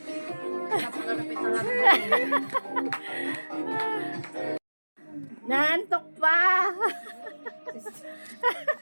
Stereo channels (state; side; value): inverted; both; correlation -1.00